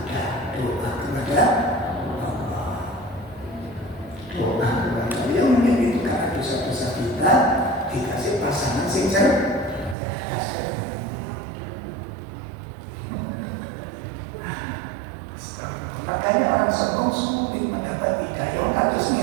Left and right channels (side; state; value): left; drops out; at 10.0 s